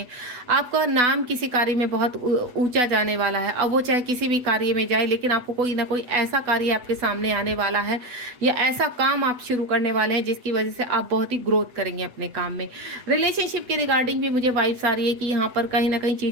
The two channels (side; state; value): left; late; 8.1 ms